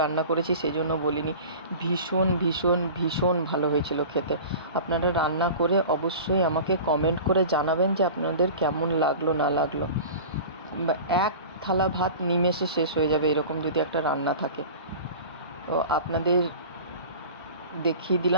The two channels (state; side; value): inverted; both; correlation -0.37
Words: রান্না করেছি সেই জন্য বলিনি, ভীষণ ভীষণ ভীষণ ভালো হয়েছিল খেতে। আপনারা রান্না করে অবশ্যই আমাকে কমেন্ট করে জানাবেন যে আপনাদের কেমন লাগলো না লাগলো। এক থালা ভাত নিমেষে শেষ হয়ে যাবে এরকম যদি একটা রান্না থাকে। তো আপনাদের দেখিয়ে